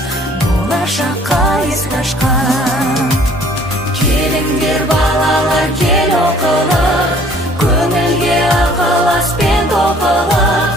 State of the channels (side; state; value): both; normal; correlation 0.55